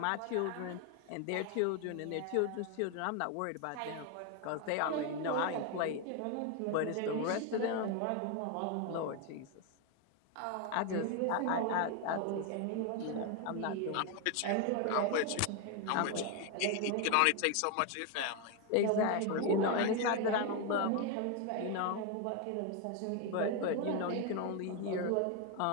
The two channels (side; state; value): both; different; correlation 0.01